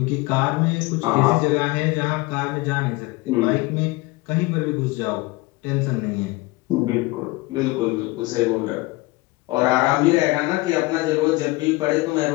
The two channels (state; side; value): quieter; right; 22.1 dB